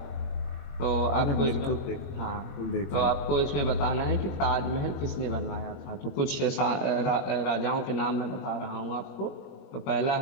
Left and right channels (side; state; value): right; late; 21 ms